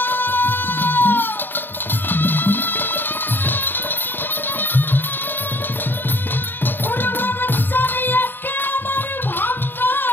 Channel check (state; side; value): late; right; 0.094 ms